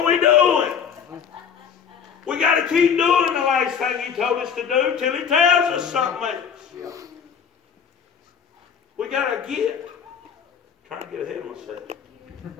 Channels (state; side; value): quieter; right; 7.3 dB